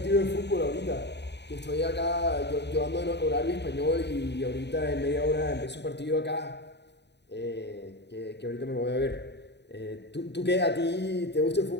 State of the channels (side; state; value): right; late; 0.50 ms